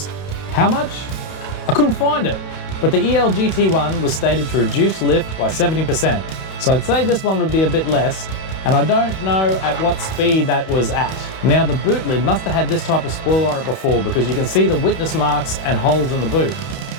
How much? I couldn't find it, but the EL GT1 was stated to reduce lift by 70%, so I'd say this one would be a bit less, and I don't know at what speed that was at. Now the boot lid must have had this type of spoiler on it before because you can see the witness marks and holes in the boot.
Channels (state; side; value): late; right; 31 ms